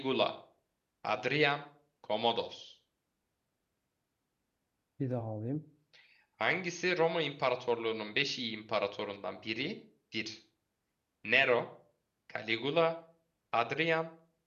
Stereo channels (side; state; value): both; identical; correlation 1.00